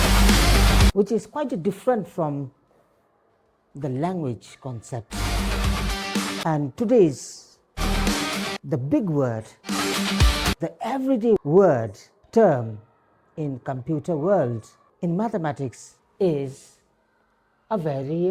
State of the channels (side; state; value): both; identical; correlation 1.00